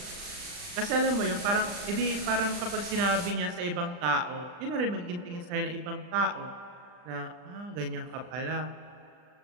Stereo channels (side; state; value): left; late; 40 ms